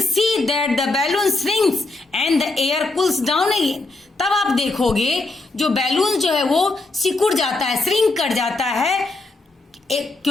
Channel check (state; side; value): quieter; right; 3.2 dB